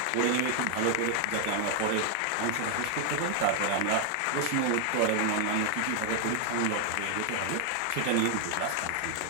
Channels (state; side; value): different; both; correlation 0.00